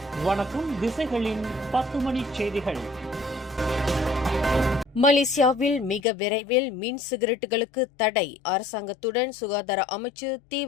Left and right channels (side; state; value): right; drops out; at 6.1 s